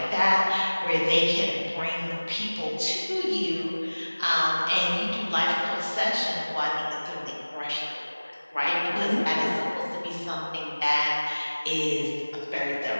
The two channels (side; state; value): both; inverted; correlation -1.00